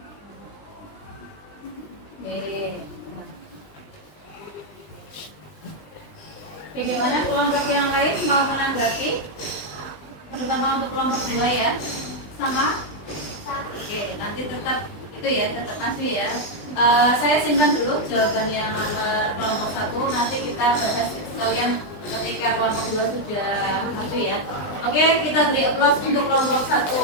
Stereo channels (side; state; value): right; late; 20 ms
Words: Bagaimana kelompok yang lain mau menanggapi? Terutama untuk kelompok 2 ya. Sama? Oke, nanti tetap itu ya, tetap masih ya. Saya simpan dulu jawaban yang nomor kelompok 1. Nanti kita bahas sekalian ketika kelompok 2 sudah masuk ya. Oke, kita beri aplaus untuk kelompok 1.